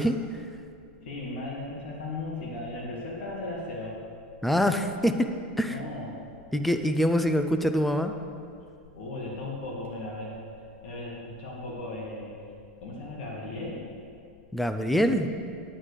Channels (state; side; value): noise; left; rumble, 25 dB below the sound